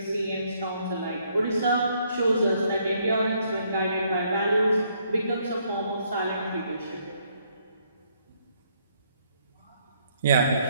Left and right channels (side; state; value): both; inverted; correlation -0.70